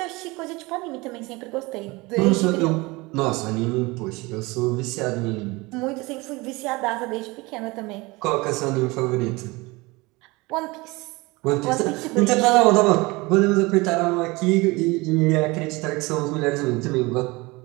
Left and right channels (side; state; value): left; quieter; 23.6 dB